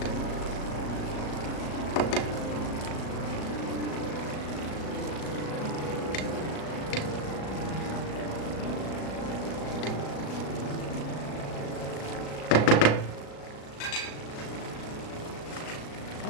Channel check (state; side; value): late; right; 37 ms